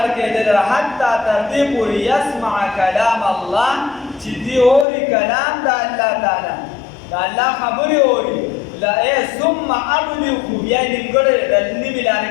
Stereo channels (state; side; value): drops out; right; at 4.9 s